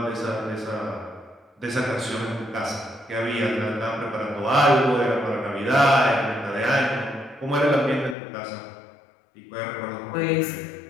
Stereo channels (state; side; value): drops out; right; at 8.2 s